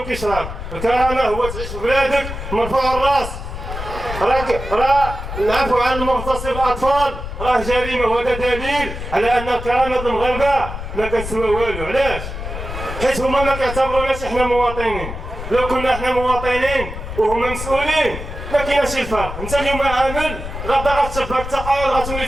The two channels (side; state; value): left; noise; rumble, 8 dB below the sound